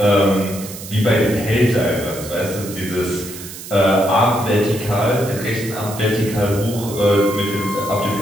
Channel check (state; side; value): noise; right; hiss, 12 dB below the sound